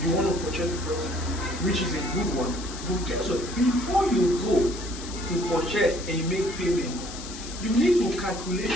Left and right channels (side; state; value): left; noise; hiss, 12 dB below the sound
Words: you want to purchase the property, which is a good one. But guess what? Before you go to purchase and make payment, you need to calculate